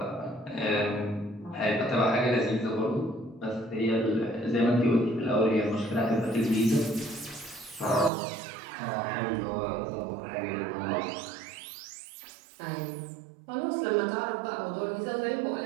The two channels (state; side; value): drops out; left; at 8.1 s